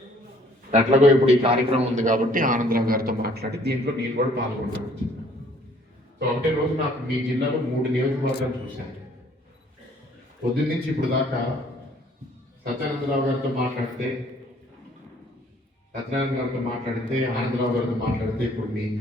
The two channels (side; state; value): both; normal; correlation 0.59